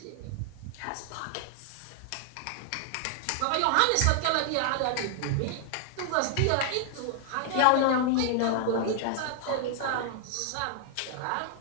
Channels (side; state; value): both; different; correlation 0.00